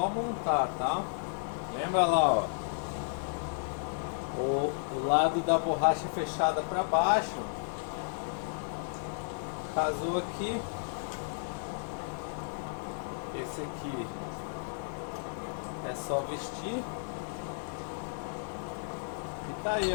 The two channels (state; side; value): silent; right; digital silence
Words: montar, tá? Lembra lá, ó, o lado da borracha fechada para baixo. Casou aqui. Esse aqui é só vestir. E tá aí,